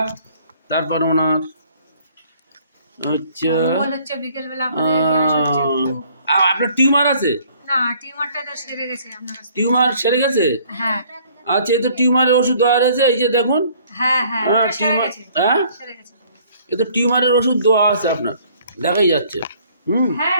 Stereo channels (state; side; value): inverted; both; correlation -0.59